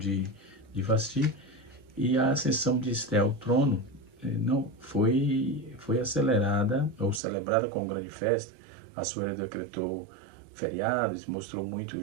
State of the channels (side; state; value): left; drops out; at 7.2 s